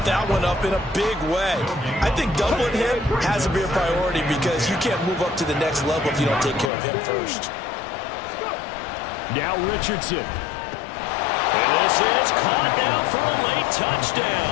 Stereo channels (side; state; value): right; drops out; at 6.7 s